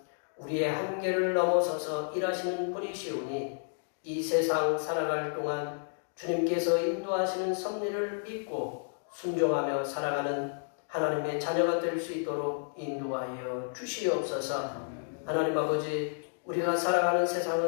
우리의 한계를 넘어서서 일하시는 분이시오니 이 세상 살아갈 동안 주님께서 인도하시는 섭리를 믿고 순종하며 살아가는 하나님의 자녀가 될 수 있도록 인도하여 주시옵소서. 하나님 아버지, 우리가 살아가는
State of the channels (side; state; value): right; silent; digital silence